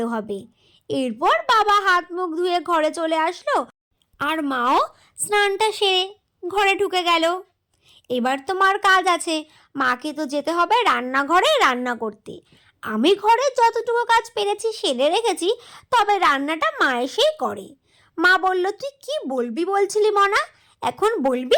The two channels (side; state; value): both; identical; correlation 1.00